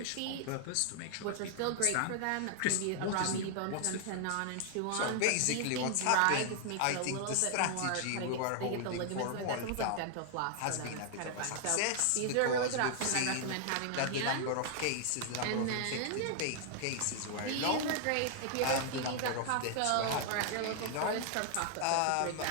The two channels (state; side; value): different; both; correlation 0.00